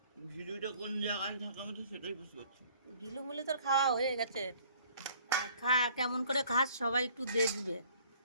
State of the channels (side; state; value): both; inverted; correlation -0.56